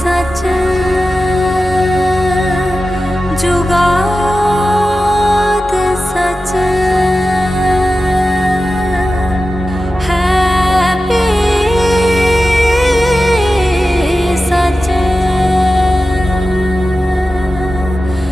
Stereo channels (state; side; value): normal; both; correlation 0.93